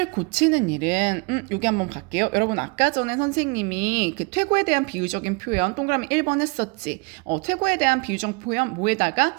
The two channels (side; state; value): left; quieter; 29.5 dB